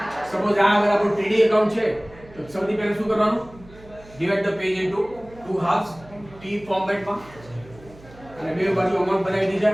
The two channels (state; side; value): noise; right; hum, 22 dB below the sound